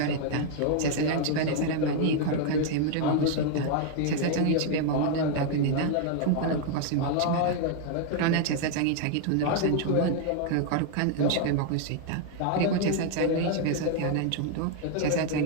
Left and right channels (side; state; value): both; different; correlation 0.00